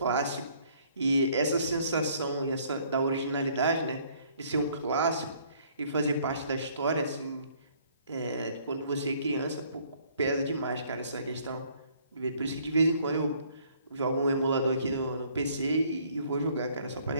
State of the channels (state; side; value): inverted; both; correlation -0.61